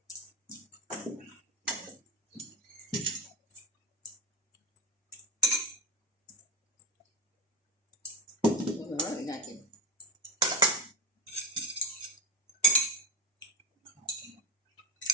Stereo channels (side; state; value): both; normal; correlation 0.19